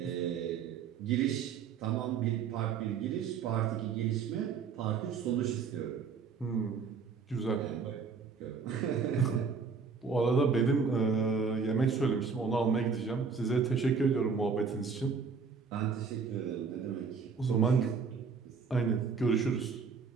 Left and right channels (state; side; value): quieter; left; 5.6 dB